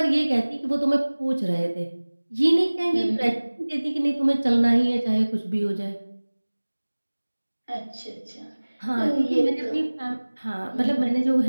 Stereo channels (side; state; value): both; inverted; correlation -1.00